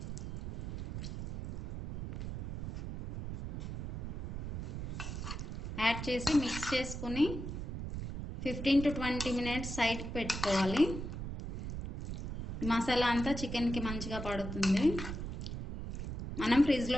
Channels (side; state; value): right; noise; rumble, 5 dB below the sound